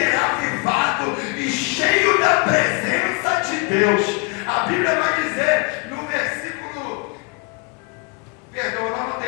avivado e cheio da presença de Deus. A Bíblia vai dizer no versículo, perdão, eu não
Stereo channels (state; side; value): quieter; right; 29.7 dB